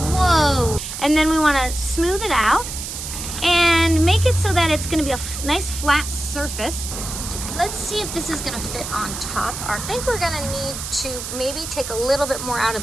Whoa! And then we wanna smooth it out and make it so that it's gonna be a nice flat surface. Let's see if this is gonna fit on top. I think we're gonna need to maybe take a little bit more out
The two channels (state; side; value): noise; right; hiss, 7 dB below the sound